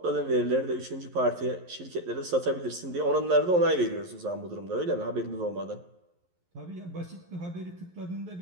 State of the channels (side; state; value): left; late; 11 ms